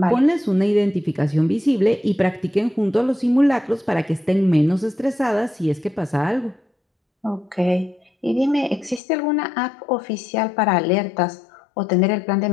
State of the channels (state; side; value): drops out; right; at 9.0 s